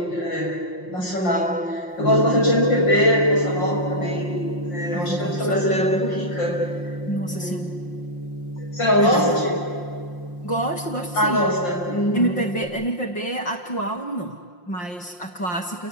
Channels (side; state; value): right; late; 5.6 ms